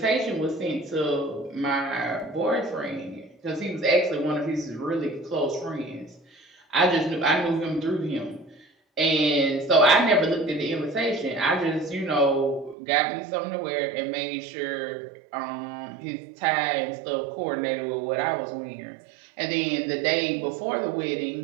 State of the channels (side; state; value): left; drops out; at 12.8 s